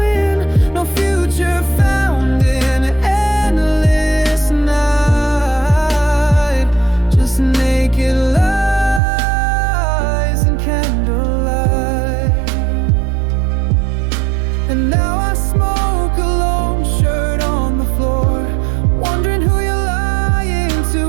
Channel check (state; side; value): drops out; left; at 9.0 s